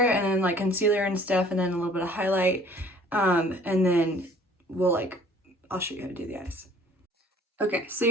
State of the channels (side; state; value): both; normal; correlation 0.53